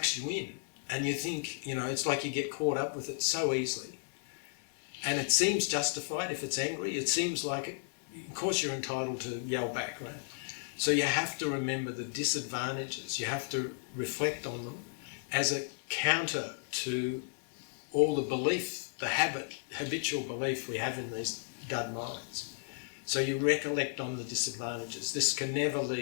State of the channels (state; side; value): silent; right; digital silence